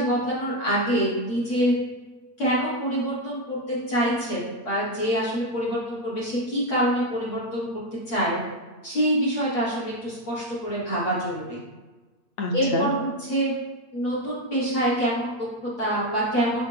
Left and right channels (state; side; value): late; right; 8.3 ms